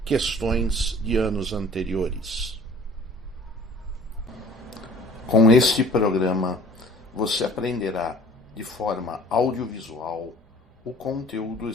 questões de anos anteriores. Com este programa, você aprenderá de forma audiovisual o conteúdo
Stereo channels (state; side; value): normal; both; correlation 0.49